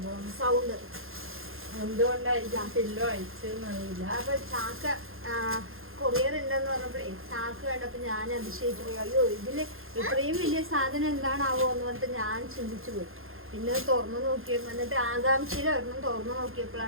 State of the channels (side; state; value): left; late; 0.60 ms